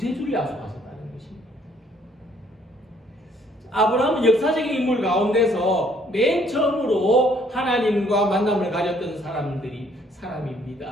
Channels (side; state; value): both; normal; correlation 0.64